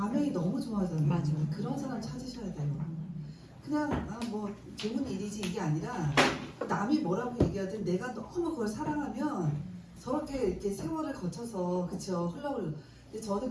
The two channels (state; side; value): identical; both; correlation 1.00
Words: 너무 좋아하잖아요. 맞아. 그런 사람 찾으셔야 돼요. 그냥 뭐 좋은 일이지 이게 아니라 남이 뭐라고 얘기하든 내가 너무 그걸 사랑하면 저렇게 이렇게 세월을 거쳐서 그쵸 흘러올. 근데 저는